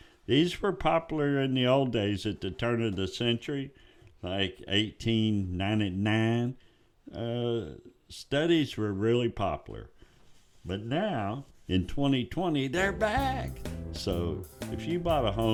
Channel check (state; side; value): identical; both; correlation 1.00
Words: These were popular in the old days at the turn of the century. Like 1899, studies were really popular. But now, in 2020, they're back. So if you bought a